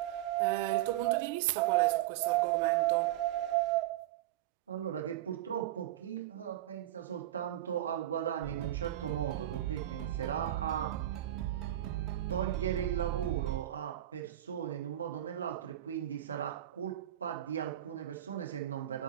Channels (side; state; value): left; quieter; 13.2 dB